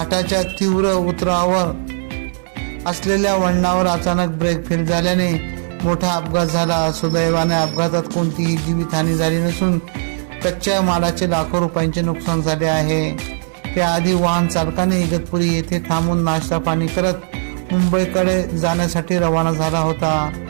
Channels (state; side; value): silent; left; 67 dB below the other